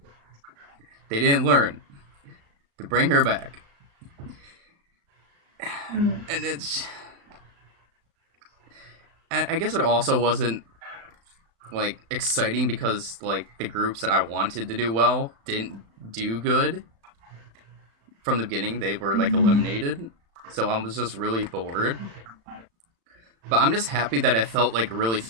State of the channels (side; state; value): left; late; 35 ms